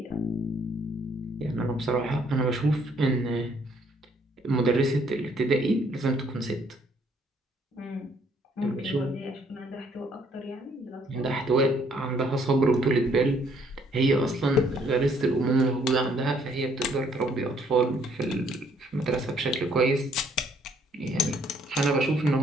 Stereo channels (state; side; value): normal; both; correlation 0.65